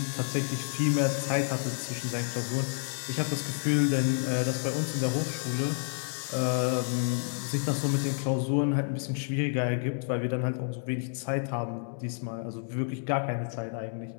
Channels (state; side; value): silent; right; digital silence